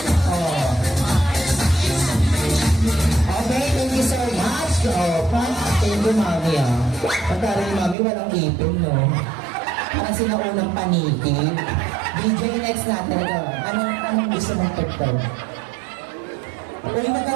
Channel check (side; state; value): left; drops out; at 8.0 s